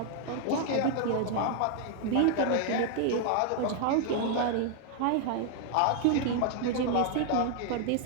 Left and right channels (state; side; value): different; both; correlation 0.00